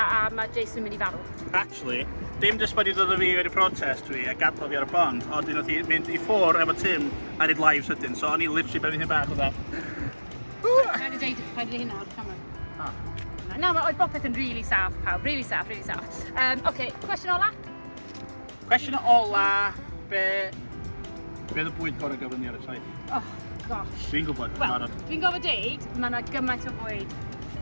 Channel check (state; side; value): inverted; both; correlation -1.00